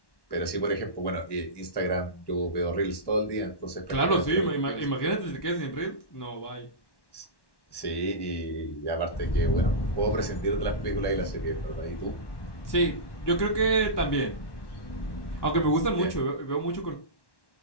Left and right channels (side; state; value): right; late; 1.1 ms